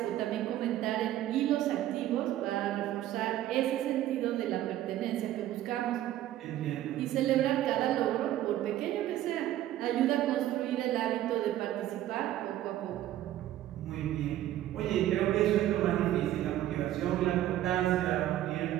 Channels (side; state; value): left; quieter; 13.3 dB